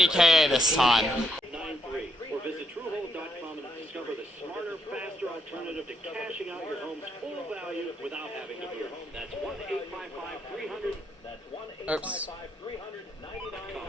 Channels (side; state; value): both; normal; correlation 0.75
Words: this time. 93, or visit TrueHold.com and discover the smarter, faster alternative to cashing out your home's full value without having to move. That's 1-855-300. That's